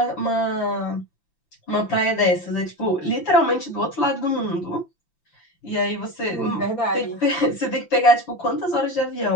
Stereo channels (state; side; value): late; right; 5.9 ms